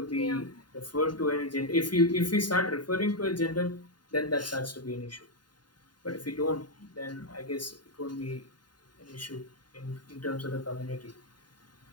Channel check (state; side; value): late; right; 0.71 ms